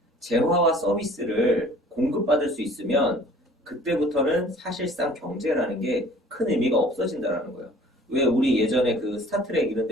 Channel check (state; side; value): normal; both; correlation 0.50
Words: 재화와 서비스를 공급받을 수 있으면 그때부터는 사실상 경제라는 게 큰 의미가 없어진다라는 거예요. 왜 우리 예전에 그 스타트랙 이런